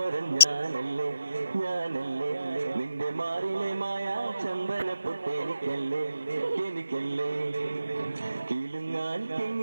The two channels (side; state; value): both; inverted; correlation -0.86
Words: ഞാനല്ലേ നിന്റെ മാറിലെ മായ ചന്ദന പൊട്ടെനിക്കല്ലേ എനിക്കല്ലേ കിലുങ്ങാൻ